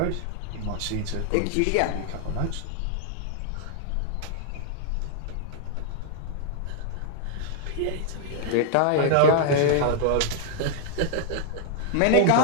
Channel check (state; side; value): different; both; correlation -0.01